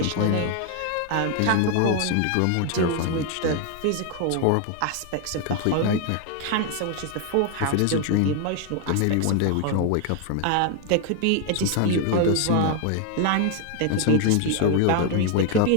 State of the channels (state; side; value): different; both; correlation 0.01